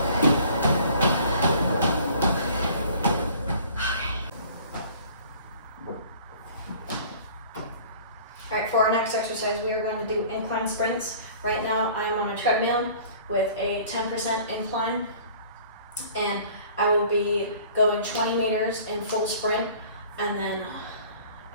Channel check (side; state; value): both; inverted; correlation -0.50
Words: All right, for our next exercise, we are going to do incline sprints. Right now, I'm on a treadmill with a 10% incline, and I will be going 20 meters in full sprint, and then